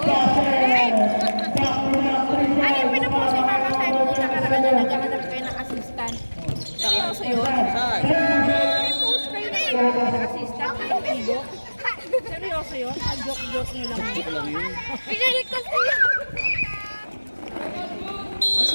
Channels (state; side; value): inverted; both; correlation -1.00